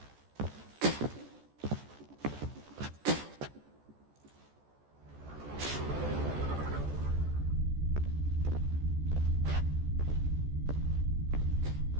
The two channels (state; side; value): late; left; 14 ms